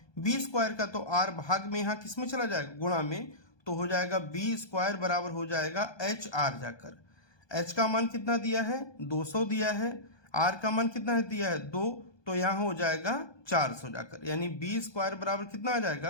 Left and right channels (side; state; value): right; late; 1.2 ms